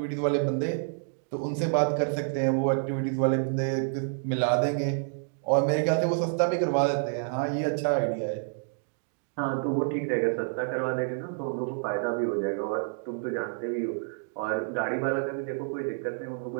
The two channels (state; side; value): silent; left; digital silence